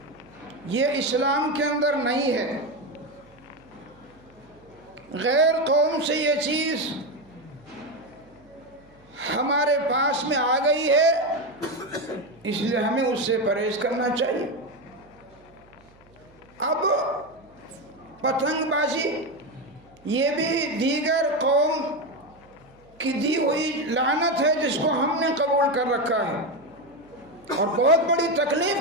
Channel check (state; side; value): noise; right; hum, 29 dB below the sound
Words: یہ اسلام کے اندر نہیں ہے، غیر قوم سے یہ چیز ہمارے پاس میں آ گئی ہے، اس لیے ہمیں اس سے پرہیز کرنا چاہیے۔ اب پتنگ بازی یہ بھی دیگر قوم کی دی ہوئی لعنت ہے جس کو ہم نے قبول کر رکھا ہے، اور بہت بڑی